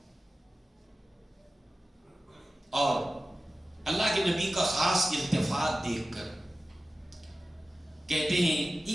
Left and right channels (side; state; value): both; normal; correlation 0.95